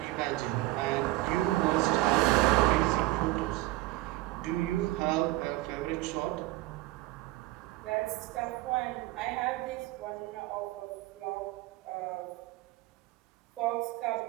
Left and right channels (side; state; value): left; quieter; 18.3 dB